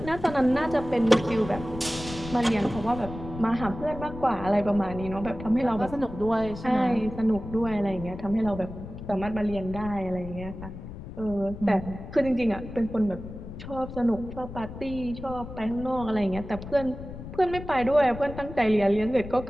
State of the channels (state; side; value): noise; left; rumble, 11 dB below the sound